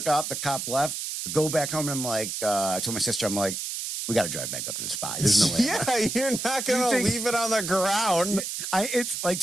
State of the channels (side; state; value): right; noise; hiss, 4 dB below the sound